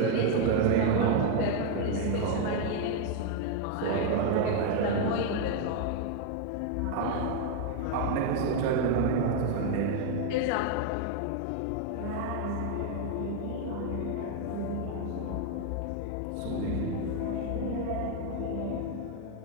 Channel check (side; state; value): both; different; correlation 0.01